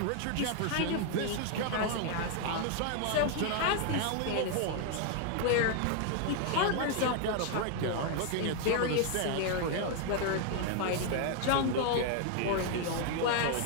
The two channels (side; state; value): both; different; correlation 0.00